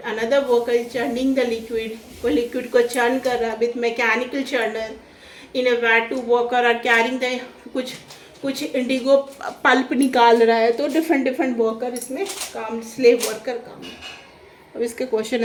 another worker is churning the liquid, वो liquid को churn कर रहा है with mechanical churner in a vat। two worker are carrying the कुछ इंडिगो पल्प निकाल रहा है, तो डिफरेंट वर्कर इसमें काम, स्लेव वर्कर काम। अब इसके क्वेश्चन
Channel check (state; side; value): identical; both; correlation 1.00